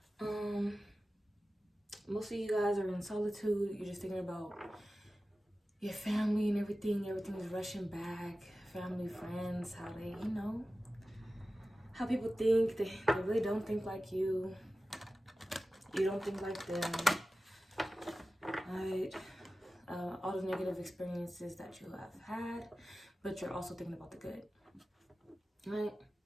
Um, Most of you guys are in solitude. You're just thinking about your family and everything. Everything's rushing back. Family, friends, how they, how people think. They really don't think like you. You don't think like them. Right? All the negative experiences that you have had, but you're also thinking about the good. Right?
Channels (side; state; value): both; normal; correlation 0.95